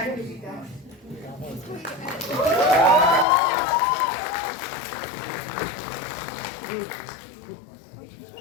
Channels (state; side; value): drops out; right; at 3.2 s